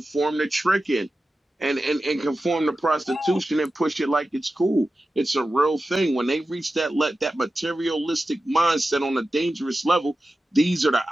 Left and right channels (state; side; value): normal; both; correlation 0.93